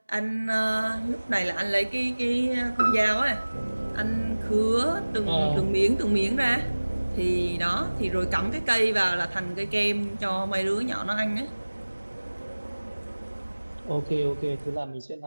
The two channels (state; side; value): inverted; both; correlation -1.00